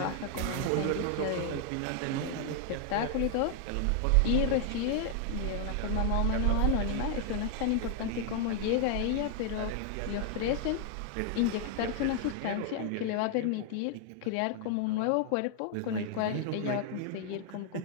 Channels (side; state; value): both; different; correlation 0.00